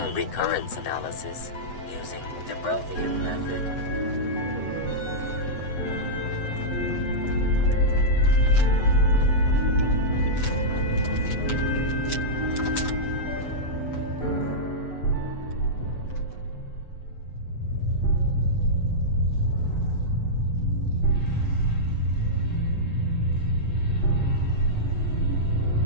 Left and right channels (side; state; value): right; late; 8.0 ms